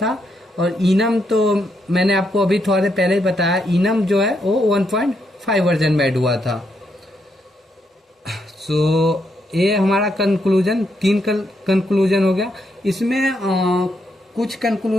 और इनम तो मैंने आपको अभी थोड़ा देर पहले ही बताया, इनम जो है वो 1.5 वर्जन में ऐड हुआ था। सो ये हमारा कंक्लूजन, 3 कंक्लूजन हो गया। इसमें कुछ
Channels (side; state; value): both; normal; correlation 0.78